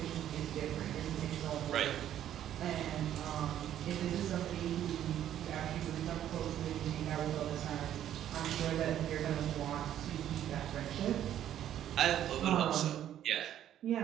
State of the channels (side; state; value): left; quieter; 11.2 dB